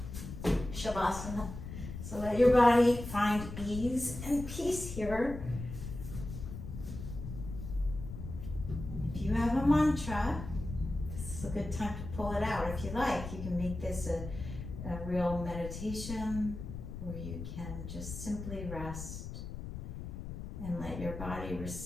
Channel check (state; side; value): noise; left; rumble, 8 dB below the sound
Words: Shavasana. So let your body find ease and peace here. If you have a mantra, this is a good time to pull it out. If you like, you can make this a real meditation or you can just simply rest and let your body